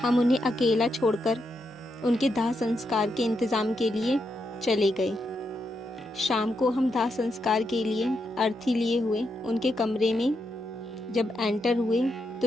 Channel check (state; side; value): normal; both; correlation 0.82